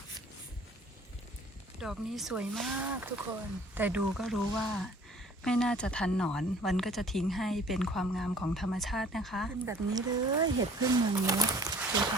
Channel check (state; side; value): normal; both; correlation 0.52